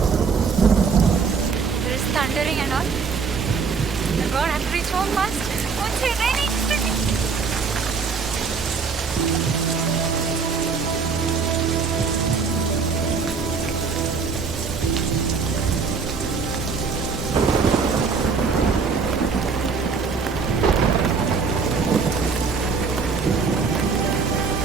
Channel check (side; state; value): left; quieter; 5.2 dB